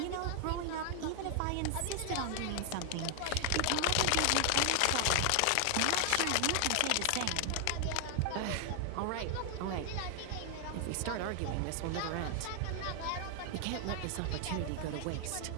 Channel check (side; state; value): both; different; correlation 0.00